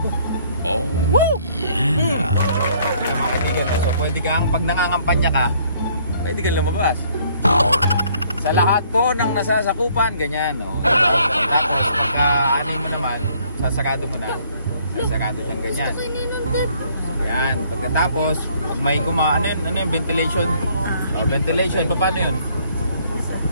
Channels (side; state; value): both; inverted; correlation -0.63